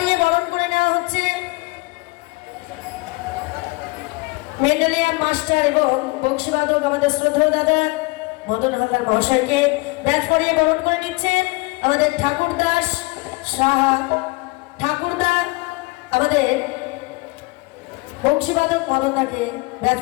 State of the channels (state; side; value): quieter; right; 25.5 dB